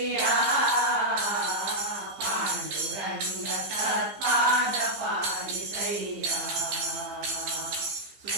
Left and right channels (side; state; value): left; late; 15 ms